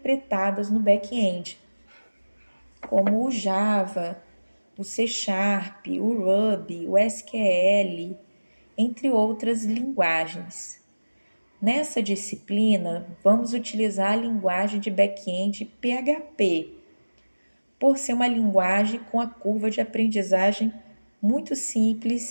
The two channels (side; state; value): both; inverted; correlation -1.00